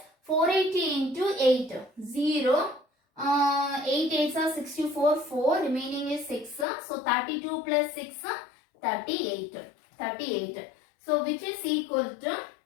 480 into 8, 0. 8 8s are 64, 4, remaining is 6. So 32 plus 6, 38. So which is equal to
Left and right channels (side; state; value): right; drops out; at 6.7 s